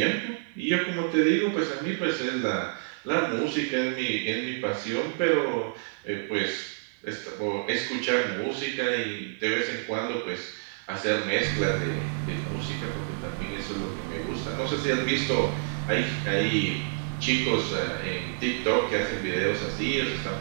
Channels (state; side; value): silent; left; 58 dB below the other